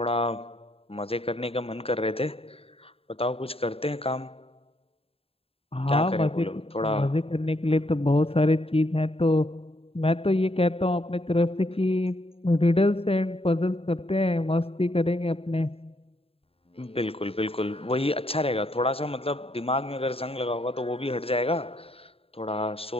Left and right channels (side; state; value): right; late; 0.28 ms